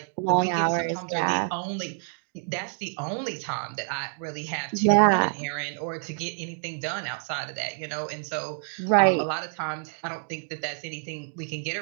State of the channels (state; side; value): silent; left; 60 dB below the other